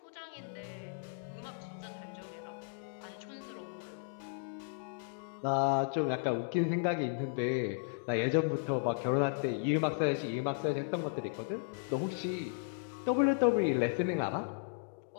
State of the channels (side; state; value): right; silent; digital silence